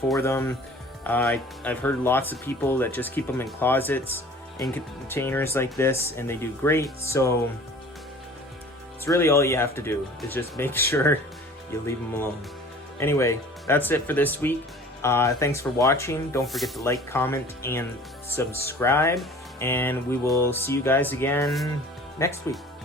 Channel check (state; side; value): normal; both; correlation 0.46